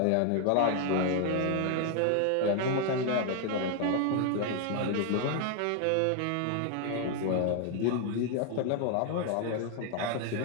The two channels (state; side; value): different; both; correlation 0.00